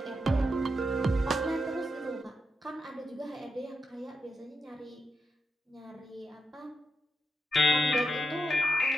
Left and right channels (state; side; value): normal; both; correlation 0.84